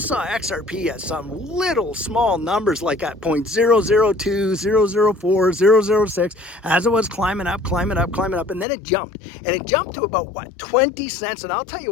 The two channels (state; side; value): drops out; right; at 8.7 s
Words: XRP at some little small numbers like at 0.002, 004, 006, as it was climbing up, and then it jumped. And it jumped to about, 20 cents. And I'll tell